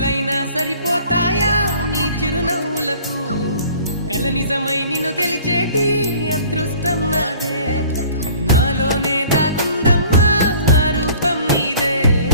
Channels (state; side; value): inverted; both; correlation -0.50